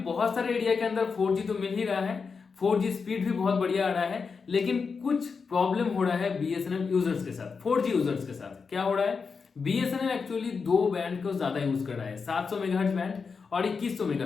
बहुत सारे एरिया के अंदर 4G तो मिल ही रहा है, 4G स्पीड भी बहुत बढ़िया आ रहा है, लेकिन कुछ प्रॉब्लम हो रहा है BSNL यूजर्स के साथ, 4G यूजर्स के साथ। क्या हो रहा है? BSNL एक्चुअली 2 बैंड को ज्यादा यूज कर रहा है, 700 मेगाहर्ट्ज बैंड और 2100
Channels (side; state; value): right; quieter; 5.2 dB